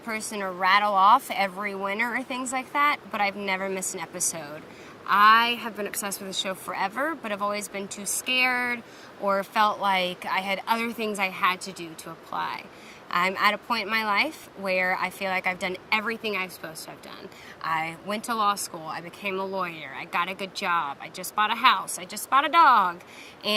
to rattle off every winner or things like that, but I've never missed an episode. I have been obsessed with the show forever, but I've always been too scared or felt like I had other things I had to do to apply. I'm at a point in my life where I feel like I've done everything I'm supposed to have done. I went to law school, I became a lawyer, I got a good job, I just bought a house, I just bought a dog,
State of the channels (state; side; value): identical; both; correlation 1.00